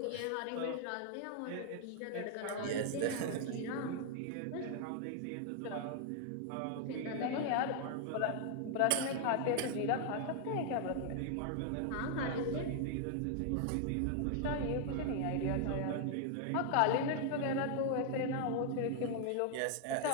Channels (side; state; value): both; different; correlation 0.00